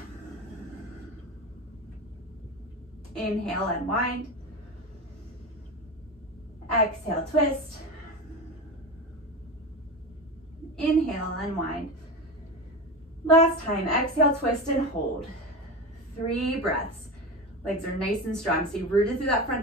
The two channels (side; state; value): both; normal; correlation 0.24